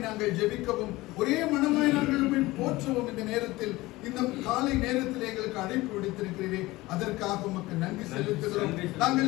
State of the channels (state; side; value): quieter; right; 19.6 dB